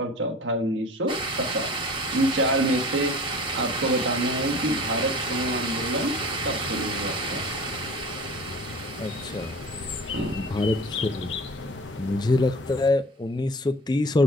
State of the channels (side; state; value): both; normal; correlation 0.41